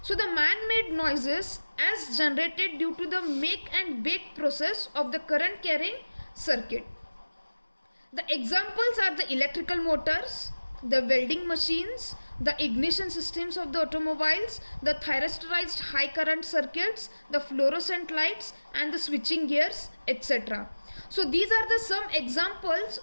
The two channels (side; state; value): both; inverted; correlation -1.00